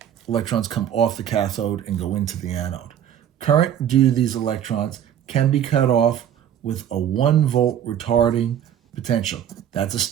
Electrons come off the cathode and go into the anode. Current due to these electrons can be cut off with a 1 volt retarding potential. That's a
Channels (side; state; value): left; quieter; 9.9 dB